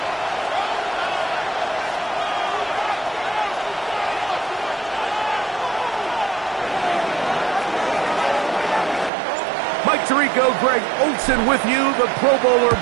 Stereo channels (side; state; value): left; drops out; at 9.1 s